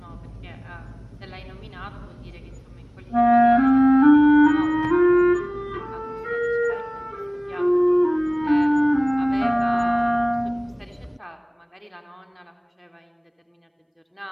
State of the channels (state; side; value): identical; both; correlation 1.00